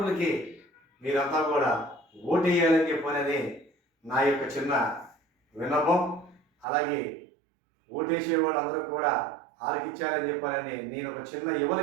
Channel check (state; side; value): drops out; left; at 6.7 s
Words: మీరంతా కూడా ఓటు వేయాలని చెప్పనని నా యొక్క చిన్న విన్నపం. అలాగే ఓటేసే వాళ్ళందరూ కూడా ఆలకించాలని చెప్పాలని నేను ఒక చిన్న యువల